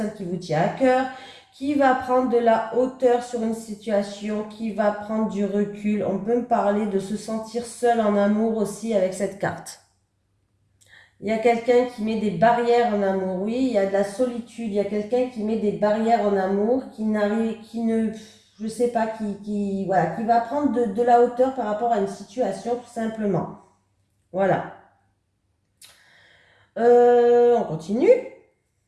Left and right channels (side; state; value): both; identical; correlation 1.00